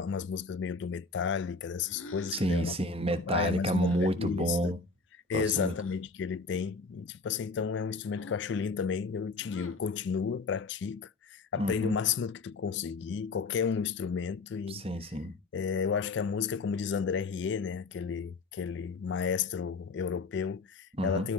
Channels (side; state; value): right; quieter; 3.8 dB